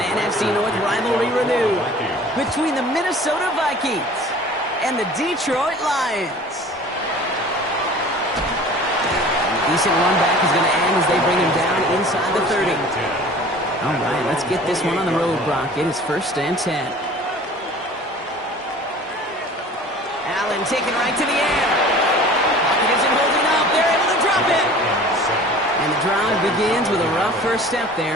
North rivalry renewed between the Minnesota Vikings and the Detroit Lions. A decent run back is going to end as they bring him down inside the 30. All right, let's get this one on the road, Brock. It is 1st and 10. Allen taken right to the air. Pocket isn't holding up. They're able to drop it. And the drive begins with a rough first step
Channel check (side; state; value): both; normal; correlation 0.45